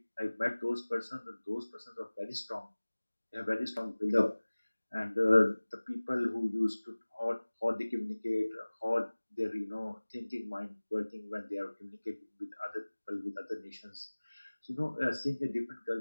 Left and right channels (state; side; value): inverted; both; correlation -1.00